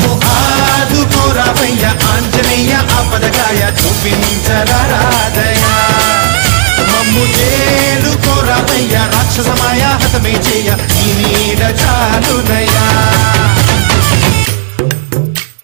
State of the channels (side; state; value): left; silent; digital silence